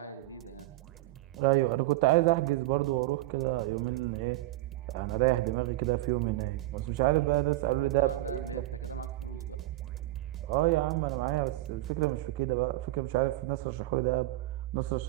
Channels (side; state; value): left; quieter; 17.3 dB